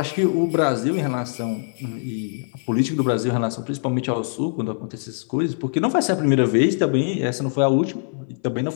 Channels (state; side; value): silent; right; 59 dB below the other